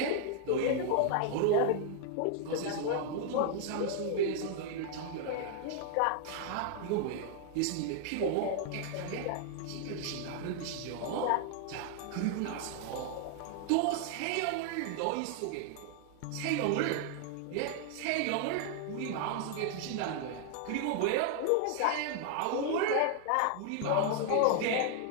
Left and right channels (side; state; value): both; different; correlation 0.00